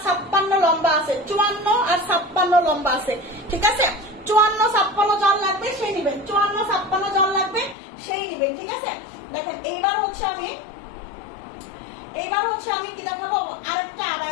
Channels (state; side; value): drops out; right; at 7.8 s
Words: 56 লম্বা আছে, 54 আর 56 লম্বা আছে, ঠিক আছে? 54-56 জল লাগবে সেই নিবেন, 54-56 জল লাগবে সেই নিবেন, ঠিক আছে? দেখেন এইবার হচ্ছে আমি কি দেখাবো, আরেকটা